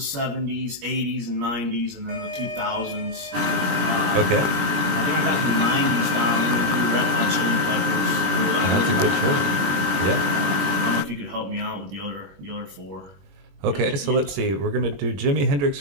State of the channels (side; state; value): left; late; 21 ms